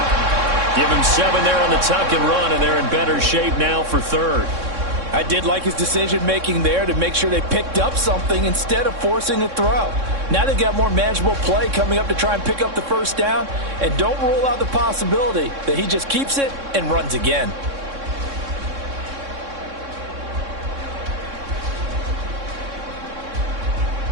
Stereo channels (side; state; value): left; late; 3.6 ms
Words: Give him 7 there on the tuck and run, and they're in better shape now for 3rd. I did like his decision-making there to make sure they picked up something instead of forcing a throw. Now they've got more manageable play coming up to try and pick up the 1st down, and don't rule out the possibility that he just keeps it and runs again.